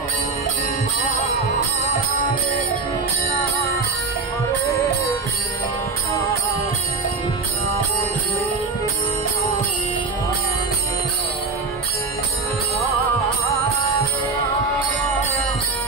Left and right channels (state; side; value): quieter; left; 4.1 dB